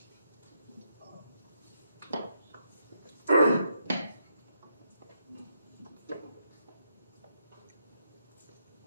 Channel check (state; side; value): inverted; both; correlation -0.79